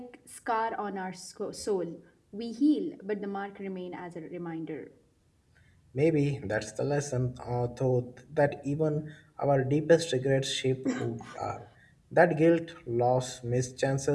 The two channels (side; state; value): both; identical; correlation 1.00